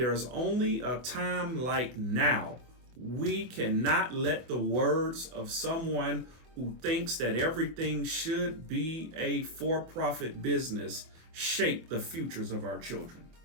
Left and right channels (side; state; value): left; late; 24 ms